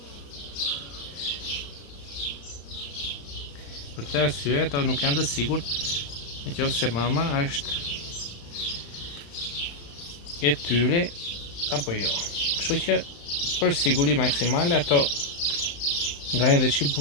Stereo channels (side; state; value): right; late; 35 ms